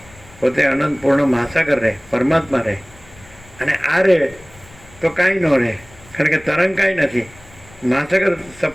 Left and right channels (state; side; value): noise; left; rumble, 24 dB below the sound